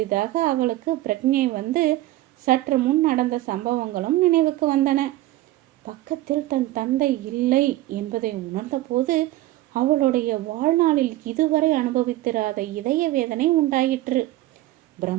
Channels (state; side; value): quieter; left; 16.3 dB